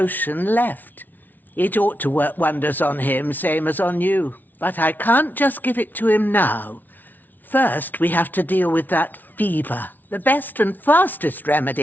left. It ought to work wonders on him, same as on you. But I can't just give it to him now. First, we have to deal with that fever. The best and fastest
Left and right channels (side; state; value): right; late; 0.085 ms